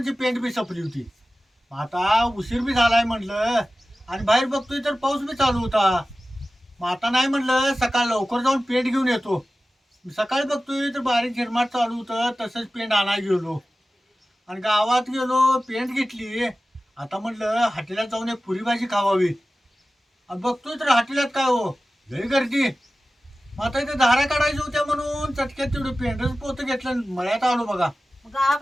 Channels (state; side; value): normal; both; correlation 0.96